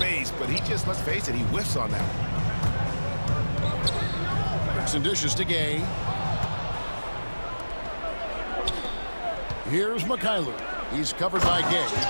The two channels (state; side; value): inverted; both; correlation -1.00